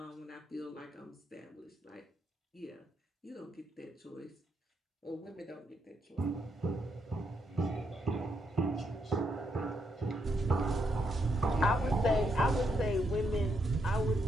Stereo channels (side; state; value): both; normal; correlation 0.79